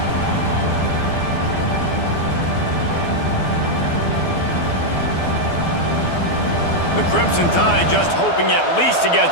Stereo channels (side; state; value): right; late; 12 ms